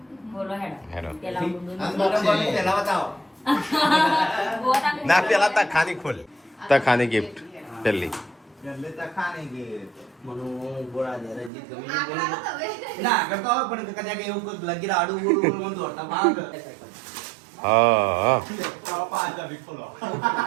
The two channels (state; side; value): drops out; left; at 11.5 s